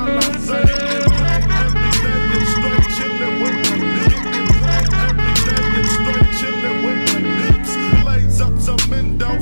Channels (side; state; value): both; inverted; correlation -1.00